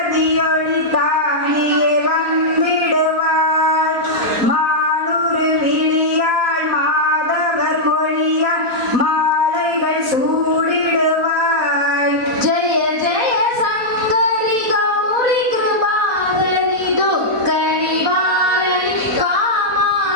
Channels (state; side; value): late; left; 4.2 ms